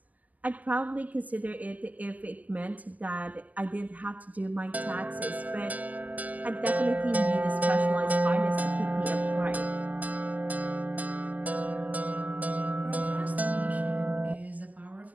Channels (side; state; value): left; late; 0.073 ms